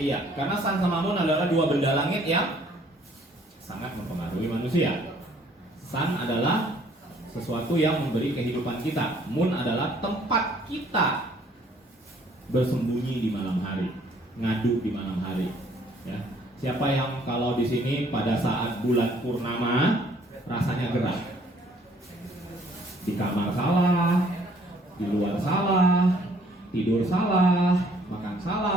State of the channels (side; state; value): both; normal; correlation 0.61